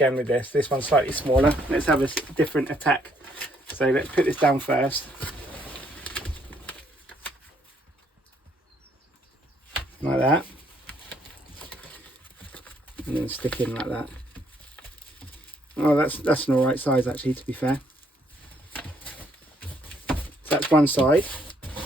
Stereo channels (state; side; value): normal; both; correlation 0.68